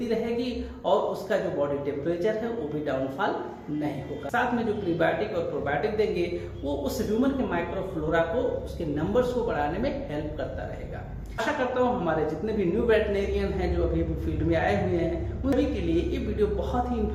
रहेगी और उसका जो बॉडी टेम्परेचर है वो भी डाउनफॉल नहीं होगा। साथ में जो प्रीबायोटिक और प्रोबायोटिक देंगे वो उस ह्यूमन के माइक्रोफ्लोरा को, उसके नंबर्स को बढ़ाने में हेल्प करता रहेगा। आशा करता हूँ हमारे जितने भी न्यू वेटनेरियन हैं जो अभी फील्ड में आए हुए हैं उन सभी के लिए ये वीडियो बहुत ही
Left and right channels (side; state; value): both; identical; correlation 1.00